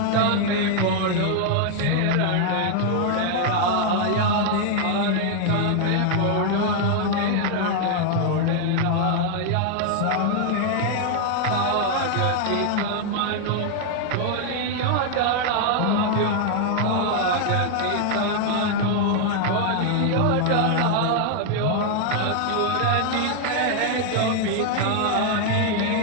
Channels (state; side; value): different; both; correlation 0.00